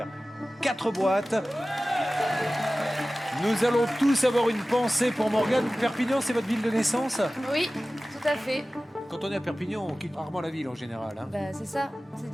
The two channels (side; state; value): both; normal; correlation 0.97